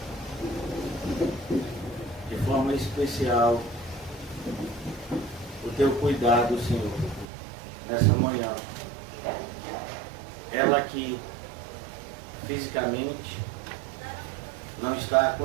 de forma especial o Teu cuidado, Senhor, nessa manhã. Ela que fisicamente não está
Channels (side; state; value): left; drops out; at 7.2 s